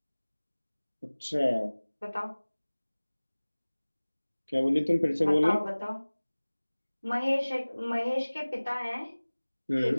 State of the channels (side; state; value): both; inverted; correlation -1.00